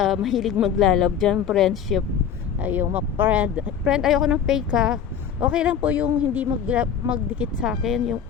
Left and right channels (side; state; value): right; quieter; 8.1 dB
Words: mahilig maglalab dyan, friendship. Ay, yung friend, ayoko ng fake ha. Okay lang po yung hindi magdikit sa akin, yung